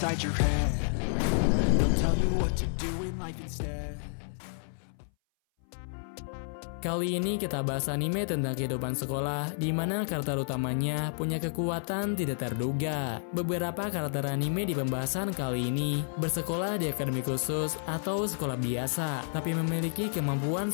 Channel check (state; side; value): silent; right; 58 dB below the other